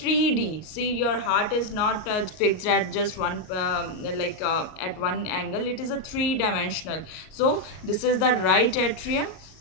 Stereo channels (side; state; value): right; late; 38 ms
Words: See, your heart is not fixed at just one at one angle. It is a three-dimensional. So this is the right atrium,